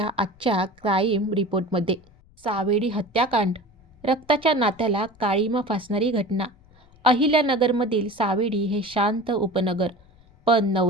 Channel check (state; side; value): noise; left; rumble, 29 dB below the sound